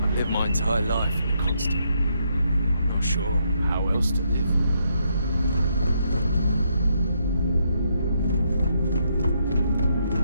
Lived my entire life in a constant. Not sure how else to live.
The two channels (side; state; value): both; inverted; correlation -0.76